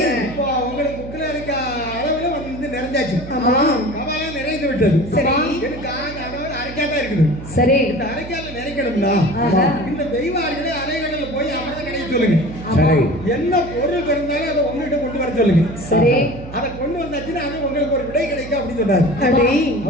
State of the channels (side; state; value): right; noise; hum, 12 dB below the sound